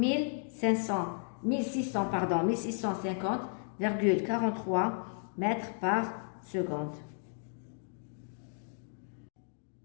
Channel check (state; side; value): silent; right; 55 dB below the other